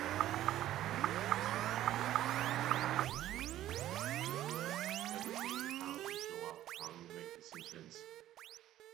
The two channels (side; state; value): left; quieter; 13.2 dB